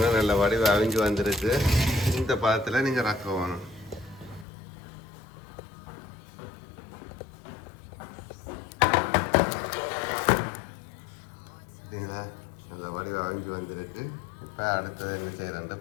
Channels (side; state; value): right; drops out; at 4.5 s